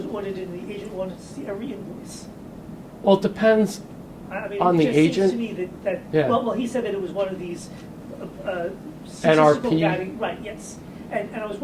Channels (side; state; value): both; identical; correlation 1.00